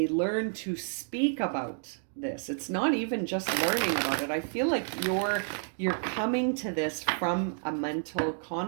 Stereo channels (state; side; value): silent; left; 58 dB below the other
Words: learn to speak about this, it's not even just learning about it. I feel like you're coming to this from a mental